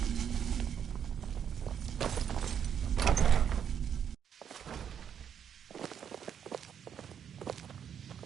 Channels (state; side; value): quieter; left; 8.4 dB